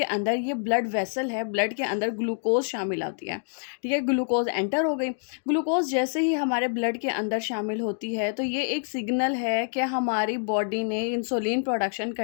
अंदर, ये ब्लड वेसल है, ब्लड के अंदर ग्लूकोज शामिल होती है, ठीक है, ग्लूकोज एंटर हो गई। ग्लूकोज जैसे ही हमारे ब्लड के अंदर शामिल होती है तो ये एक सिग्नल है कि हमारी बॉडी ने इंसुलिन प्रोडक्शन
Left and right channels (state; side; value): silent; right; digital silence